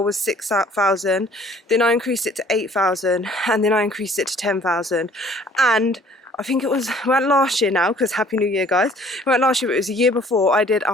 was 6,000, then I increased it to 8,000, and then I increased it to 10,000. And I think it was, well, last year now, because Happy New Year, guys. Well, last year, it was a year before, I did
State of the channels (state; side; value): normal; both; correlation 0.55